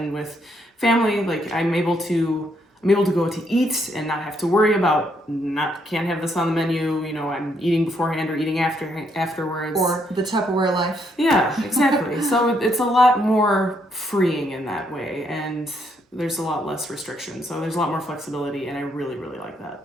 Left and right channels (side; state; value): both; normal; correlation 0.74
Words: with family. Like I'm able to go to eat and not have to worry about can't have this on the menu. You know, I'm eating beforehand or eating afterwards. Or the Tupperware life. Yeah, exactly. So it's a lot more freeing in that way, and there's a lot less restriction. So there's a lot more flexibility, and I really, really like